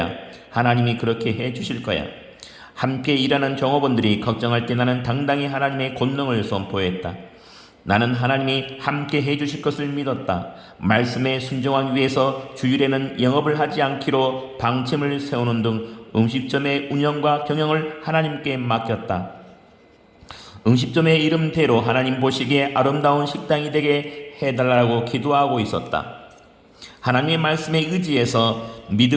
하나님이 그렇게 해 주실 거야. 함께 일하는 종업원들이 걱정할 때 나는 당당히 하나님의 권능을 선포했다. 나는 하나님이 함께 해주실 것을 믿었다. 말씀에 순종하기 위해서 주일에는 영업을 하지 않기로 방침을 세우는 등 음식점의 운영과 경영을 하나님께 맡겼다. 음식점의 이름대로 하나님 보시기에 아름다운 식당이 되게 해달라고 기도하고 있었다. 하나님의 말씀에 의지해서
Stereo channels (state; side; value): identical; both; correlation 1.00